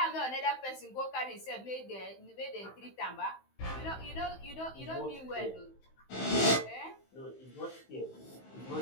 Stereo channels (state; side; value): late; right; 15 ms